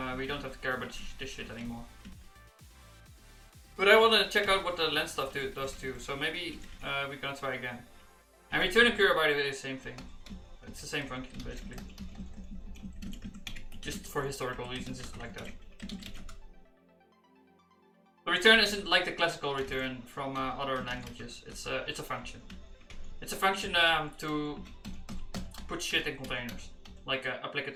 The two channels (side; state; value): both; identical; correlation 1.00